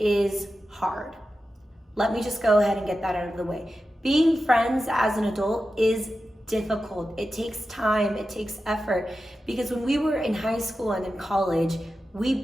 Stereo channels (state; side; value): normal; both; correlation 0.92